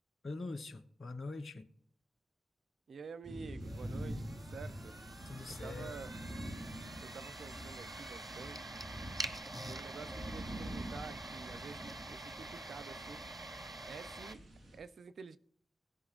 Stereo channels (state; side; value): normal; both; correlation 0.81